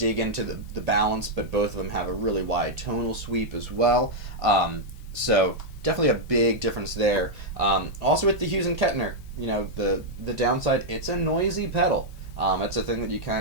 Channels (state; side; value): late; left; 1.5 ms